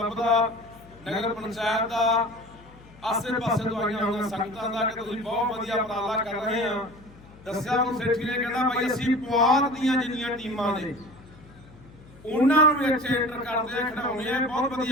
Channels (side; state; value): left; noise; hum, 22 dB below the sound